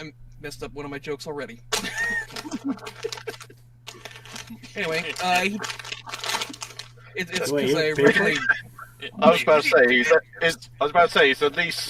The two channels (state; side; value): identical; both; correlation 1.00